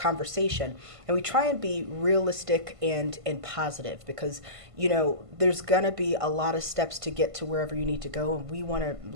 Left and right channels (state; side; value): late; left; 1.5 ms